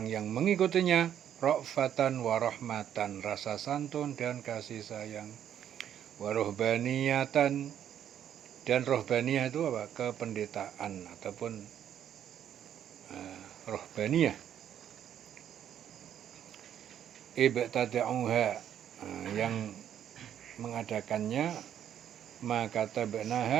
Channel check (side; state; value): left; quieter; 9.9 dB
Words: yang mengikutinya ra'fatan wa rahmatan, rasa santun dan kasih sayang. Wa ruhbaniyatan, dan rohbaniyah itu apa? Kependetaan ataupun rohbaniyah. Ibtada'uha, yang mengadakannya, maka